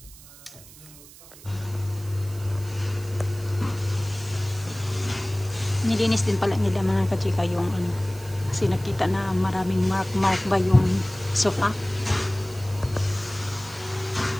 Nilinis din pala nila mga kachika yung kasi nakita na maraming mark ba yung sofa.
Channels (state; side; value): noise; right; hiss, 20 dB below the sound